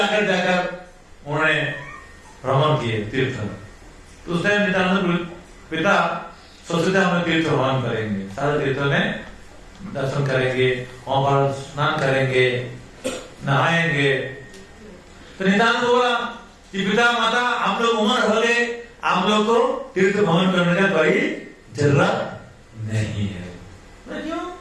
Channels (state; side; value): identical; both; correlation 1.00